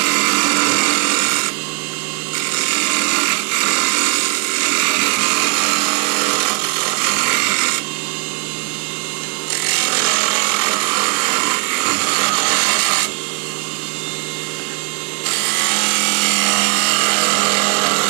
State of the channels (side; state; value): left; quieter; 30.1 dB